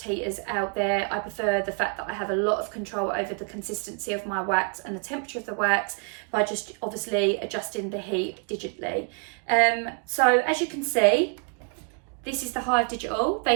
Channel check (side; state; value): left; quieter; 39.3 dB